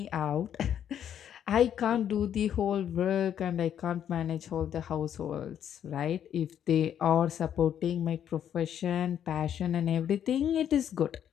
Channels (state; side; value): quieter; right; 9.6 dB